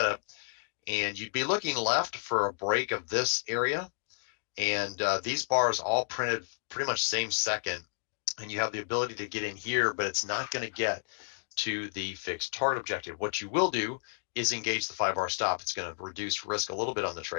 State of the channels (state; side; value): silent; right; digital silence